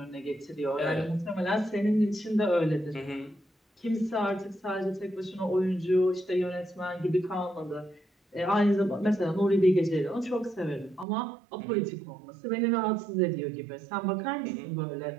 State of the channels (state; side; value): drops out; left; at 11.1 s